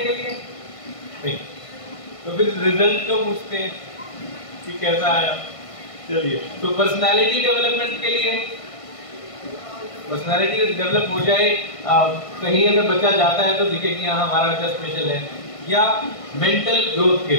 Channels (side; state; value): right; late; 1.5 ms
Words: लिए नहीं, तो फिर रिजल्ट तो पूछते हैं कि कैसा आया। चलिए, तो पर्सनालिटी डेवलपमेंट के लिए, पर्सनालिटी डेवलप हो जाए, कहीं अगर बच्चा जाता है तो दिखे कि हाँ हमारा बच्चा स्पेशल है, या मेंटल ग्रोथ के